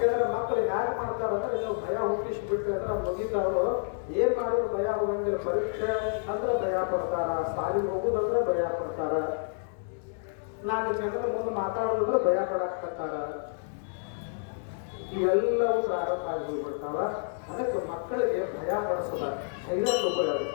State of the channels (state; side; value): silent; right; digital silence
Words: ಮಕ್ಕಳು ಯಾರು ಮಾಡ್ತಾರಂದ್ರೆ ನೀವು ಭಯ ಹುಟ್ಟಿಸ್ಬಿಟ್ರೆ ಅಂದ್ರೆ ಮುಗಿತಾವರು ಏನ್ ಮಾಡೋರು ಭಯ ಹೋಗಂಗಿಲ್ಲ. ಪರೀಕ್ಷೆ ಅಂದ್ರೆ ಭಯ ಪಡ್ತಾರ, ಸಾಲಿಗೆ ಹೋಗುದಂದ್ರೆ ಭಯ ಪಡ್ತಾರ, 4 ಜನರ ಮುಂದೆ ಮಾತಾಡೋದಂದ್ರೆ ಭಯ ಪಡಾಕ್ತಾರ. ಇವೆಲ್ಲವೂ ಪ್ರಾರಂಭ ಆಗಿ ಹೋಗ್ಬಿಡ್ತಾವ. ಅದಕ್ಕೆ ಮಕ್ಕಳಿಗೆ ಭಯ ಪಡಿಸದ, ಧೈರ್ಯ ತಗೋರು.